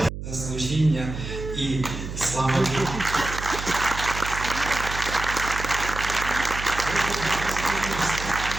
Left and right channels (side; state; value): right; noise; hum, 8 dB below the sound